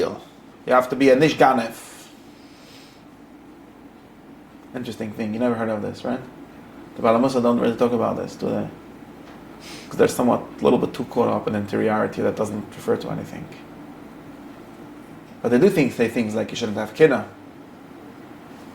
You have to be a nish ganev. Interesting thing, you never heard of this, right? The Balamusa don't really talk about this, do they? Because they're somewhat a little bit too caught up in interiority that doesn't refer to anything. But they do say things like you shouldn't have kina,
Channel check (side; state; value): both; identical; correlation 1.00